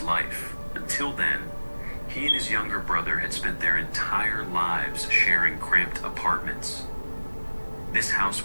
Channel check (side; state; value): both; inverted; correlation -1.00